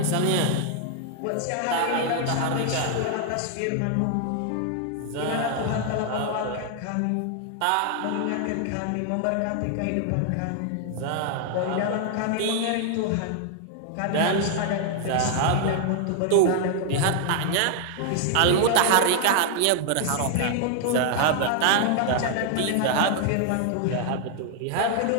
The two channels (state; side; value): different; both; correlation 0.00